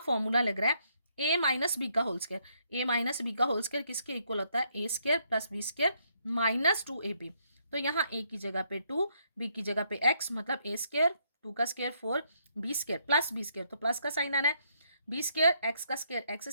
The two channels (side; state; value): both; inverted; correlation -0.73